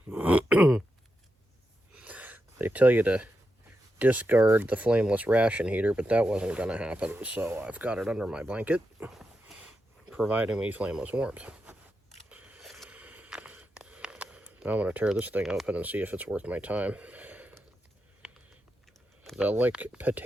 They tell you to discard the flameless ration heater, but that wasn't going to happen, so I've got it under my blanket, providing me flameless warmth. Now I'm going to tear this thing open and see if it's worth my time. The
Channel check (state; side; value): normal; both; correlation 0.87